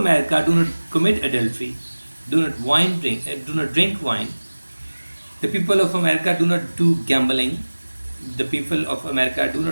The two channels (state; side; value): inverted; both; correlation -1.00